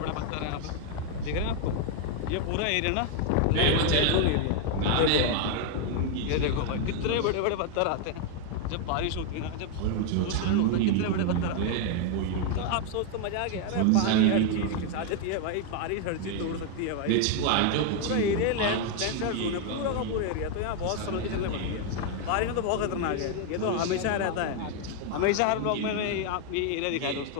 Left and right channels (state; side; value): different; both; correlation 0.00